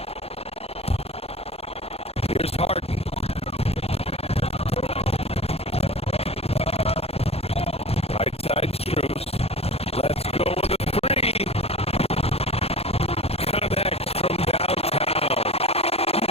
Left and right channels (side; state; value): right; late; 0.29 ms